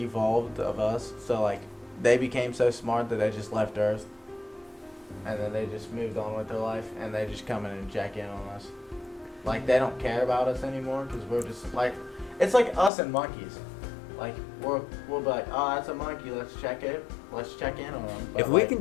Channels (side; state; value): right; drops out; at 12.9 s